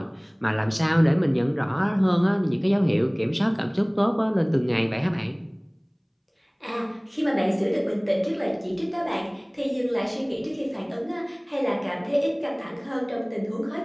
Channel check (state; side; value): identical; both; correlation 1.00